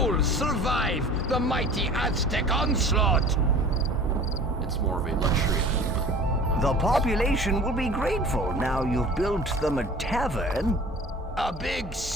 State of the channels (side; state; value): both; normal; correlation 0.44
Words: survive the mighty Aztec onslaught? It's more of a luxury item. The population will be grateful now you've built them a tavern. A big